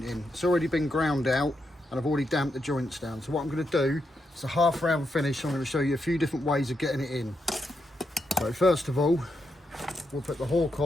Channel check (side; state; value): both; normal; correlation 0.83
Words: It's already been ground out and I've already damped the joints down. So what I'm going to do, it's a half round finish. I'm going to show you a few different ways of getting it in. So first of all, we'll put the hawk